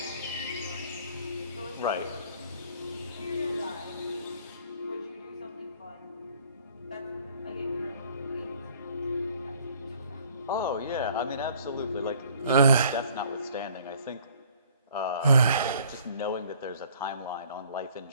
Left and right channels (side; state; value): both; inverted; correlation -0.56